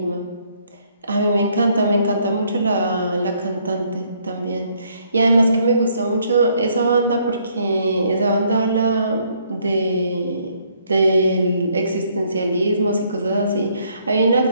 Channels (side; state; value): both; inverted; correlation -0.68